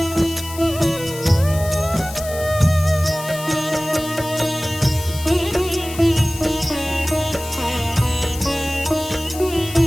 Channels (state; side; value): noise; left; hiss, 13 dB below the sound